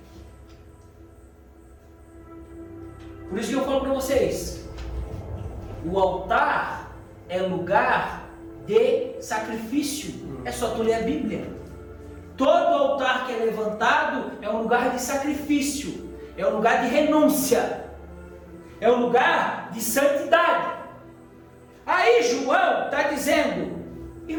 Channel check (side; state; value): both; identical; correlation 1.00